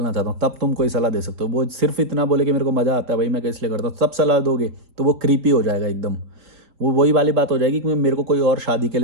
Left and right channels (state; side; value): late; left; 4.2 ms